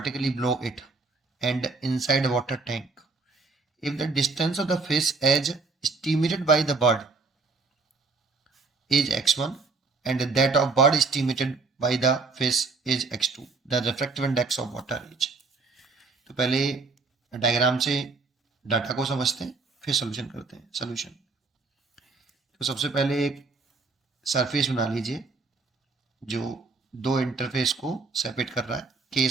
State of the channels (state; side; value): quieter; left; 4.1 dB